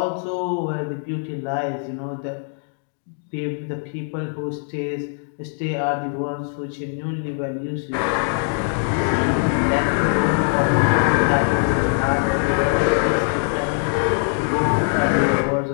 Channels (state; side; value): silent; right; digital silence